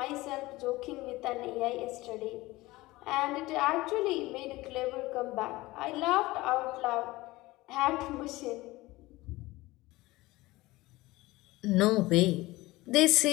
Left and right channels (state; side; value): quieter; right; 19.7 dB